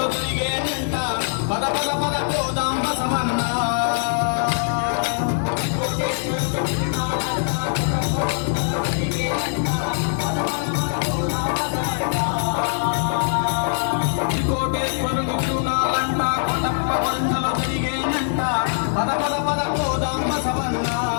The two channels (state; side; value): silent; right; digital silence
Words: తిరిగేనంట పద పద పద పోదాం బసవన్నా కోటేశ్వరుని తిరునాళ్ళంట కొటప్ప పంటలు తిరిగేనంట పద పద పద పోదాం బసవన్నా